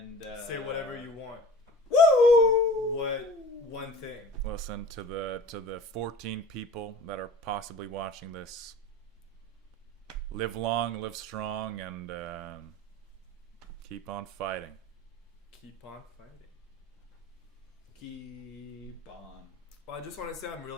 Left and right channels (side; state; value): both; normal; correlation 0.42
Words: say whatever you want. Woo! What one thing? Listen to the 14 people that are possibly watching this. Live long, live strong, and keep on fighting. keep on fighting. Keep on. Well, I just want to say I'm